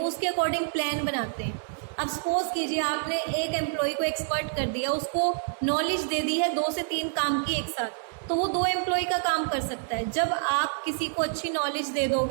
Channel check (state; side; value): silent; left; digital silence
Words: उसके अकॉर्डिंग प्लान बनाते हैं। अब सपोज कीजिए आपने एक एम्प्लॉय को एक्सपर्ट कर दिया, उसको नॉलेज दे दी है 2 से 3 काम की एक साथ, तो वो 2 एम्प्लॉय का काम कर सकता है। जब आप किसी को अच्छी नॉलेज दे